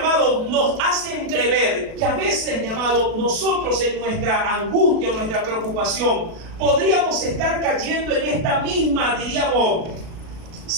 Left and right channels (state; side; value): late; left; 37 ms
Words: nos hace entrever que a veces, mi amado, nosotros en nuestra angustia, en nuestra preocupación, podríamos estar cayendo en esta misma, diríamos,